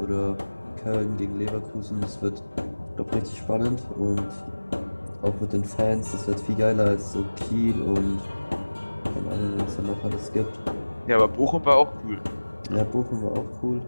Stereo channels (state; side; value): inverted; both; correlation -1.00